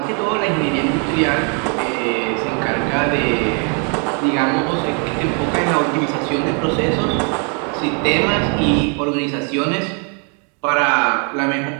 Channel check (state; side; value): quieter; left; 38.4 dB